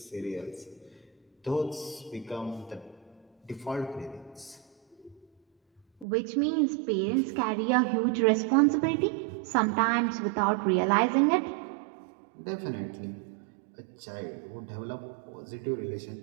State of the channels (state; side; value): drops out; left; at 6.1 s